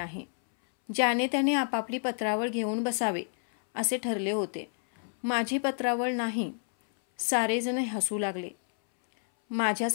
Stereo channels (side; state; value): right; silent; 59 dB below the other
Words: ज्याने त्याने आपापली पत्रावळ घेऊन बसावे असे ठरले होते. माझी पत्रावळ नाही. सारेजण हसू लागले.